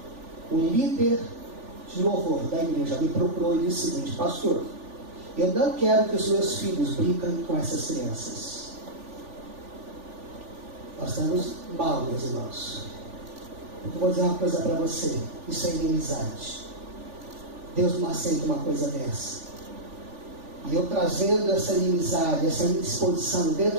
O líder de louvor da igreja me procurou e disse o seguinte: pastor, eu não quero que os meus filhos brinquem com essas crianças. Nós estamos mal, meus irmãos. Eu vou dizer uma coisa para você: isso é inimizade. Deus não aceita uma coisa dessa. E eu trazendo essa inimizade, essa indisposição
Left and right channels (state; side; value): late; left; 3.4 ms